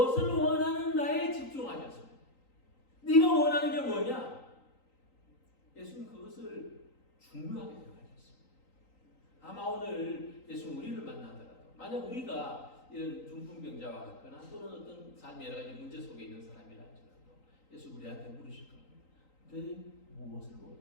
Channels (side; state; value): right; late; 3.9 ms